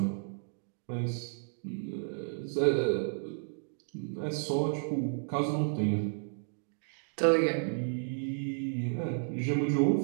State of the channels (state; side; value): silent; left; digital silence